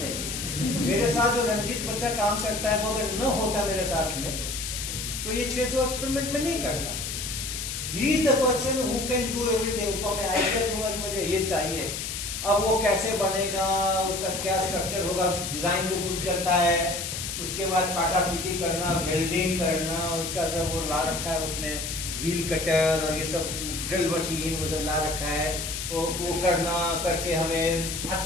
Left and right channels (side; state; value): left; noise; hiss, 5 dB below the sound